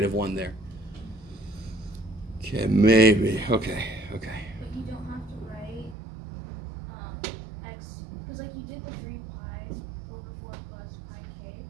there. Okay, maybe. Okay. But you don't have to write x, because like you did the 3 pi over 4 plus pi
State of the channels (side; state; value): left; drops out; at 6.0 s